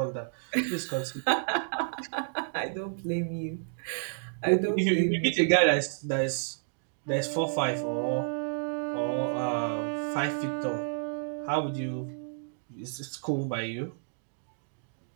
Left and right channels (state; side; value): silent; left; digital silence